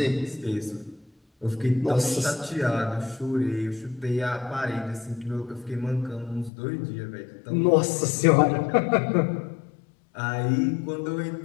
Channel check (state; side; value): drops out; right; at 6.5 s